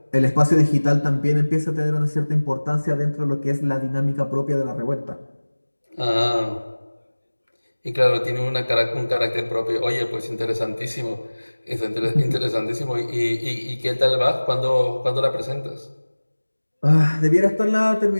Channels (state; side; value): inverted; both; correlation -1.00